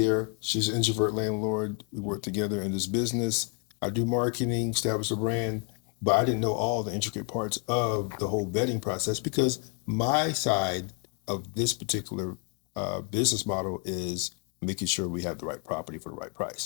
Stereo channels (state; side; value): quieter; right; 39.1 dB